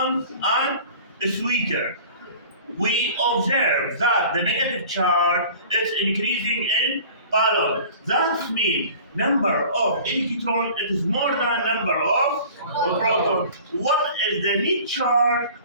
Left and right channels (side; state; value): both; inverted; correlation -0.44